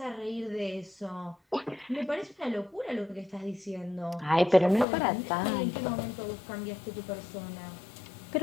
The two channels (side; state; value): right; drops out; at 4.9 s